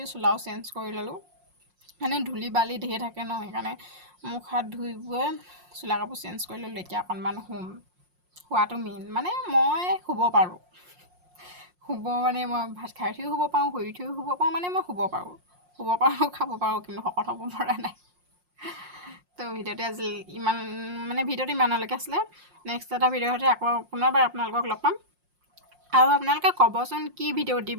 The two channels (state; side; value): late; left; 5.6 ms